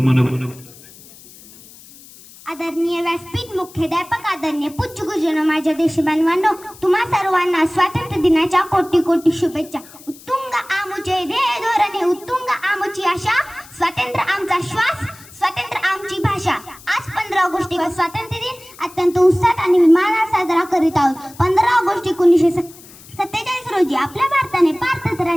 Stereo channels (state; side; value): noise; left; hiss, 21 dB below the sound